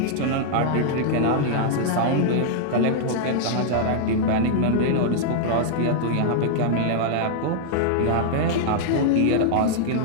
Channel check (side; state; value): both; different; correlation -0.01